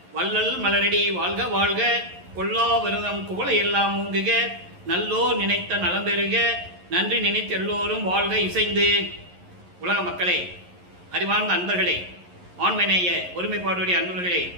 வள்ளல் மலரடி வாழ்க வாழ்க, கொல்லா விரதம் குவளை எல்லாம் ஊங்குக, நல்லோர் நினைத்த நலம் பெறுக, நன்றி நினைத்த எல்லோரும் வாழ்க இசைந்து. உலக மக்களே, அறிவார்ந்த அன்பர்களே, ஆண்மநேய ஒருமைப்பாடுடைய அன்பர்களே,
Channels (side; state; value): left; late; 11 ms